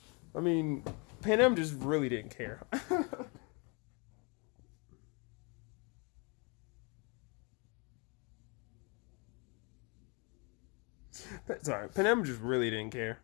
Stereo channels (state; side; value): quieter; right; 32.5 dB